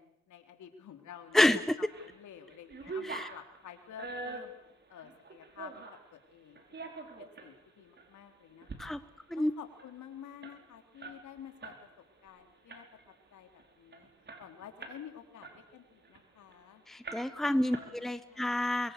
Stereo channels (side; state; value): both; normal; correlation 0.89